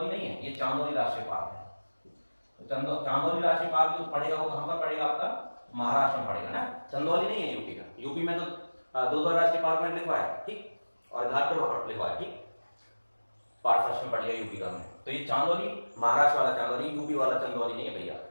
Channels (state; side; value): inverted; both; correlation -1.00